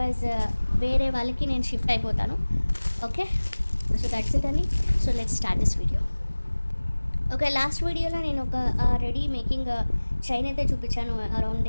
వేరే వాళ్ళకి నేను షిఫ్ట్ అయిపోతాను. ఓకే, సో దట్స్ ఇట్ అని. So let's start this video. Okay, last వీడియోలో నేను ఒక రెడీ మేకింగ్ చైన్ అయితే చూపించాను. అరౌండ్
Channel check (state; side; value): inverted; both; correlation -1.00